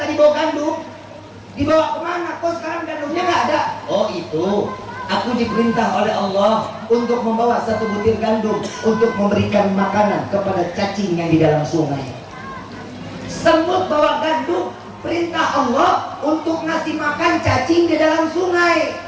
bawa gandum. Dibawa kemana? Kok sekarang gandumnya nggak ada? Oh itu, aku diperintah oleh Allah untuk membawa satu butir gandum untuk memberikan makanan kepada cacing yang di dalam sungai. Semut bawa gandum, perintah Allah untuk ngasih makan cacing di dalam sungai.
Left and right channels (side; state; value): both; identical; correlation 1.00